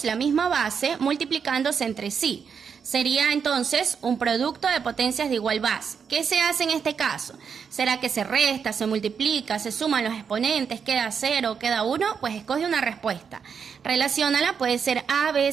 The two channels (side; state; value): left; quieter; 6.6 dB